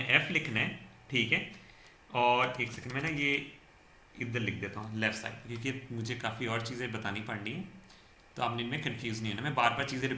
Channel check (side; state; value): both; identical; correlation 1.00